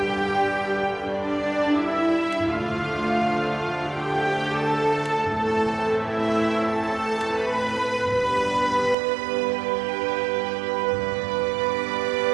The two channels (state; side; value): drops out; left; at 9.0 s